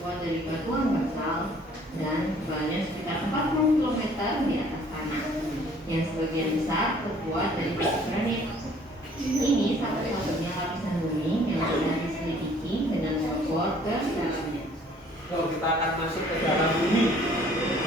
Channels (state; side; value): normal; both; correlation 0.57